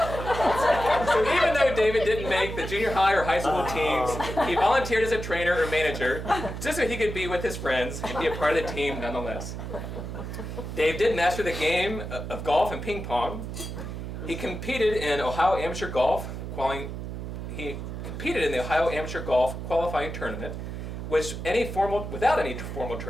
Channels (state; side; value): noise; right; hum, 7 dB below the sound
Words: So even though David didn't make the junior high or high school teams, he volunteered as a trainer or manager just so he could be with his friends and be a part of the team nonetheless. Dave did master the game of golf and ping pong. He competed in Ohio Amateur Golf qualifying tournament, which without any formal